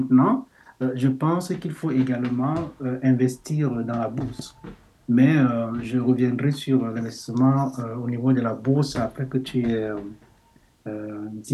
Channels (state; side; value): identical; both; correlation 1.00